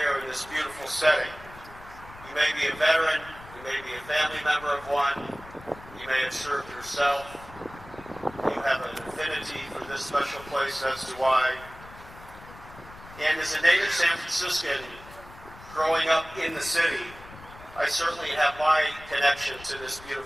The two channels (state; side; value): noise; left; rumble, 18 dB below the sound